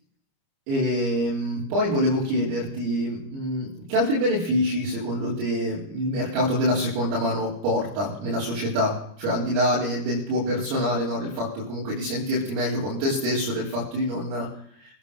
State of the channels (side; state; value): left; late; 30 ms